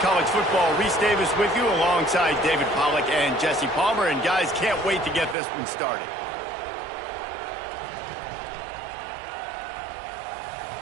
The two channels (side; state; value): left; drops out; at 5.4 s